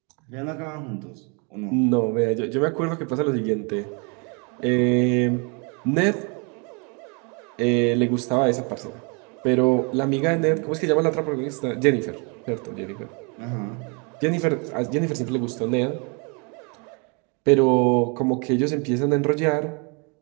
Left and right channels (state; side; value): quieter; left; 33.8 dB